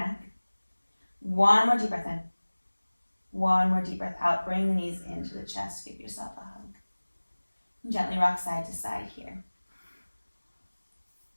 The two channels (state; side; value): inverted; both; correlation -1.00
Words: One more deep breath in. One more deep breath out. Bring the knees into the chest. Give yourself a hug. And gently rock side to side here.